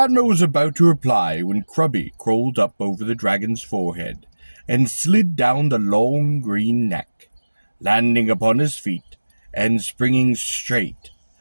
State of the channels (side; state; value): both; inverted; correlation -1.00